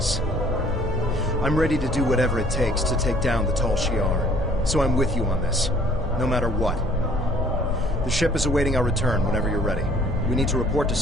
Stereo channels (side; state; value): both; normal; correlation 0.56